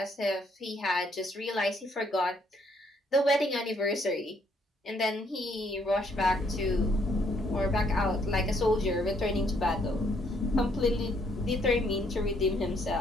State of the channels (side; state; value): both; normal; correlation 0.69